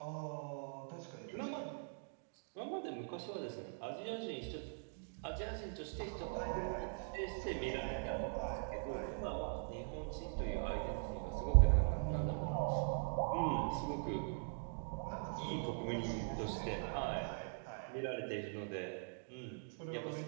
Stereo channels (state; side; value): silent; left; digital silence